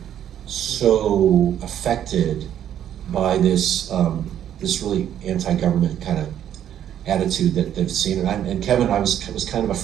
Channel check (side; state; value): left; quieter; 10.3 dB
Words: so affected by this really anti-government kind of attitude that they've seen. And Kevin, was kind of a